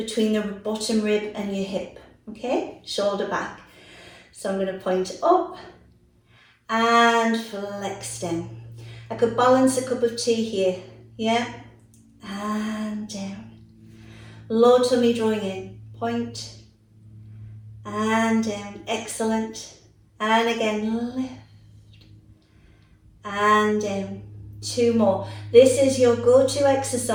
the bottom rib and your hip. Okay, shoulder back. So I'm going to point up and flex down. I could balance a cup of tea here. Yeah, and down. Low tummy drawing in. Point. And down. Excellent. And again, lift. And down. 2 more. This is your go-to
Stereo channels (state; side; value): identical; both; correlation 1.00